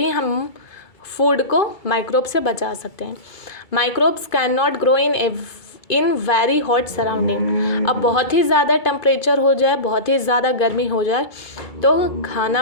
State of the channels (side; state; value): right; late; 2.3 ms